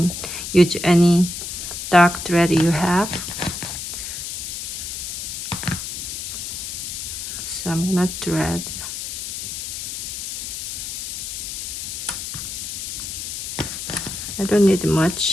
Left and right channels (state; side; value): noise; left; hiss, 6 dB below the sound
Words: use any dark thread you have. So I'm gonna thread. I don't need